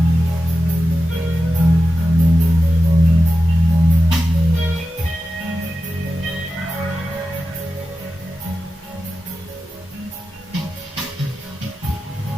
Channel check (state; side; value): normal; both; correlation 0.92